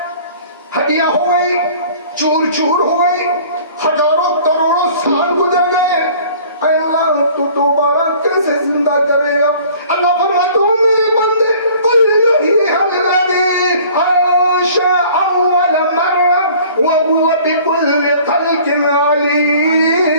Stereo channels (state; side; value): inverted; both; correlation -0.50